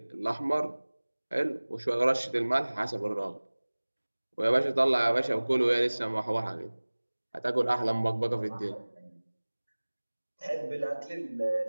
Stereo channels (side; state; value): both; inverted; correlation -1.00